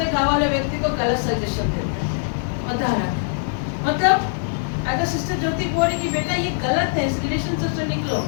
घाव वाले व्यक्ति को गलत सजेशन देता है, बता रहा था। मतलब अगर सिस्टर ज्योति बोल रही कि बेटा ये गलत है, इस रिलेशन से निकलो,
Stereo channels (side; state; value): right; silent; digital silence